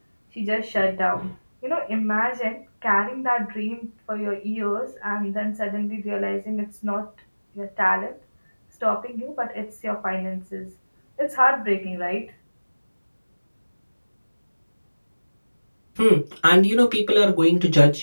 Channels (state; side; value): inverted; both; correlation -1.00